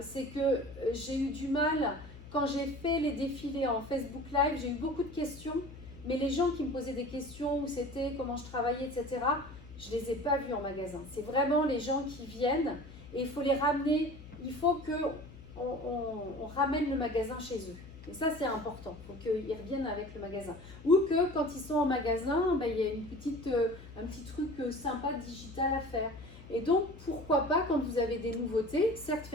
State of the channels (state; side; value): noise; left; hum, 17 dB below the sound